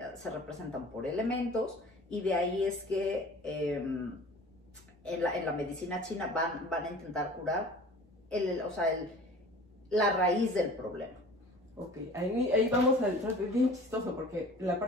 se representan por elementos, y de ahí es que en la medicina china van a intentar curar la raíz del problema. Ok, ahí vamos a entrar, es bien chistoso, porque la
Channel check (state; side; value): normal; both; correlation 0.44